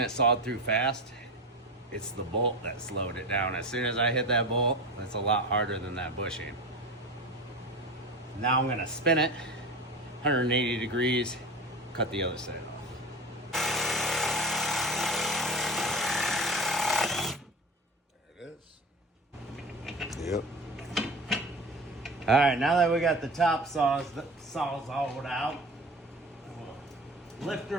sawed through fast. It's the bolt that slowed it down. As soon as I hit that bolt, it's a lot harder than that bushing. Now I'm gonna spin it 180 degrees, cut the other side off. There it is. Yep. All right, now that we got the top saws all out, we'll lift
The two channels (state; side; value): normal; both; correlation 0.30